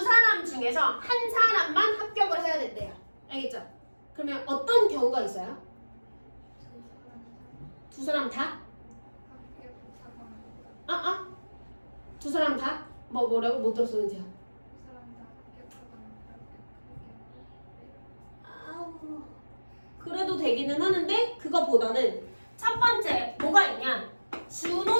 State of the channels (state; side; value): inverted; both; correlation -1.00